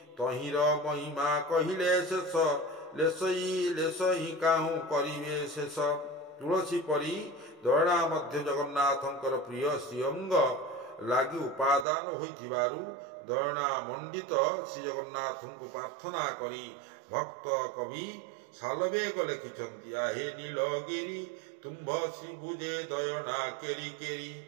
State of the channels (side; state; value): left; drops out; at 11.9 s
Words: ତହିଁର ମହିମା କହିଲେ ଶେଷ ଲେଶଇ କାହୁଁ କରିବେ ଶେଷ। ତୁଳସୀ ପରି ଦୟଣା ମଧ୍ୟ ଜଗନ୍ନାଥଙ୍କର ପ୍ରିୟ ଶ୍ରୀଅଙ୍ଗ ଲାଗି ଉପାଦାନ ହୋଇଥିବାରୁ ଦୟଣା ମଣ୍ଡିତ ଶ୍ରୀଜଗନ୍ନାଥଙ୍କୁ ପ୍ରାର୍ଥନା କରି ଭକ୍ତ କବି ଶାଲବେଗ ଲେଖିଛନ୍ତି, ଆହେ ନୀଳଗିରି ତୁମ୍ଭ ଶ୍ରୀଭୁଜେ ଦୟଣା କେରି କେରି